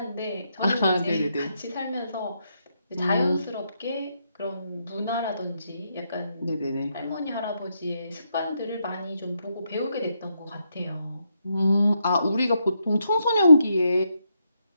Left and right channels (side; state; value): both; inverted; correlation -0.80